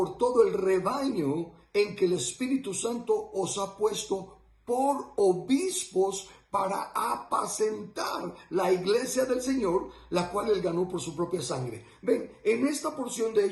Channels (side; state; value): both; identical; correlation 1.00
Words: todo el rebaño en que el Espíritu Santo os ha puesto por obispos para apacentar la iglesia del Señor, la cual él ganó por su propia sangre. Ven, en esta porción de